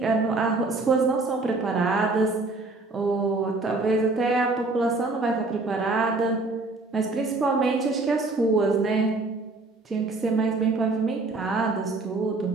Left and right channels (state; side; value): quieter; left; 3.3 dB